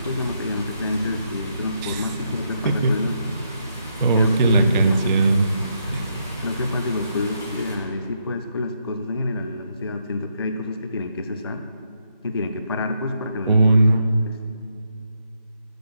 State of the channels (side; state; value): both; inverted; correlation -0.77